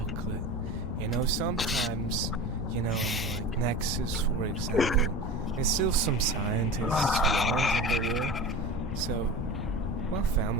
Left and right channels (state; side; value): normal; both; correlation 0.30